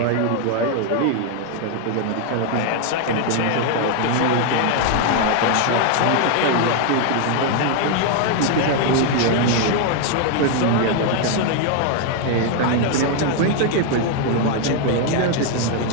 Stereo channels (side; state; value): both; different; correlation 0.01